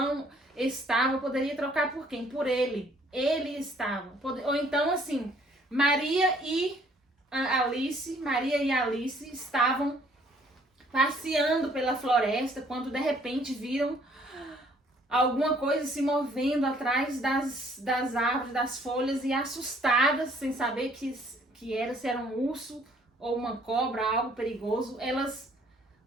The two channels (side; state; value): both; normal; correlation 0.61